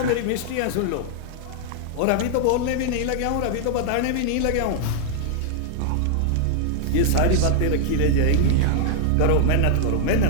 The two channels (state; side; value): different; both; correlation -0.01